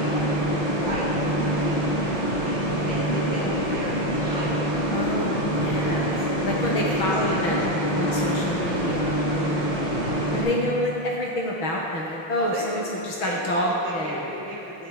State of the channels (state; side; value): late; right; 6.2 ms